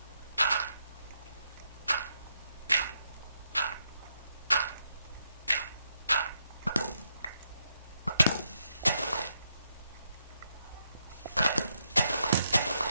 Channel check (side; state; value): both; inverted; correlation -0.81